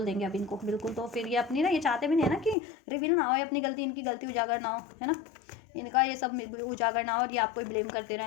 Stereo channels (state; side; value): drops out; right; at 2.6 s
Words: देंगे अब इनको बिल्कुल। तो फिर ये अपनी ना, ये चाहते भी नहीं है ना कि रिवील ना हो अपनी गलती, इनकी गलती उजागर ना हो, है ना, इनका ये सब उजागर ना हो और ये आपको ब्लेम करते